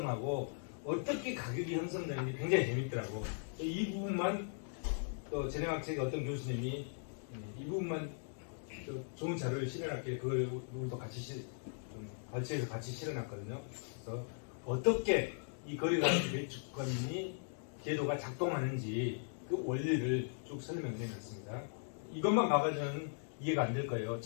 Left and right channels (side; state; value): right; silent; digital silence